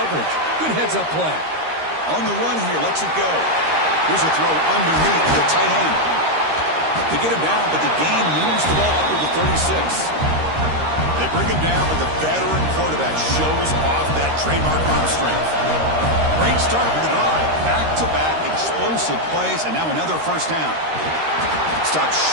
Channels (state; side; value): late; left; 13 ms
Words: Good heads-up play. On the run here, lets it go. Here's a throw underneath the tight end. They get him down, but the gain moves the ball up to the 36. They bring him down, but the veteran quarterback shows off that trademark arm strength. Great start for the drive. Back-to-back explosive plays, and now another first down. Stopped